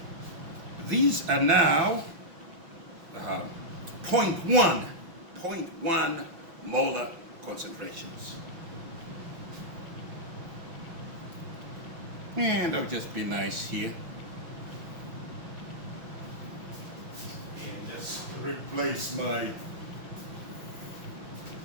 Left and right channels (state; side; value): late; left; 6.1 ms